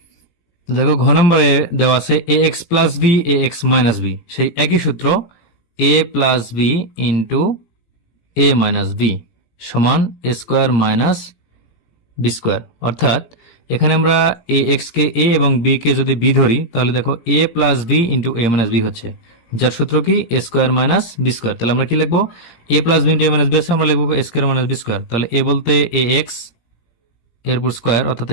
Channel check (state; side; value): late; right; 17 ms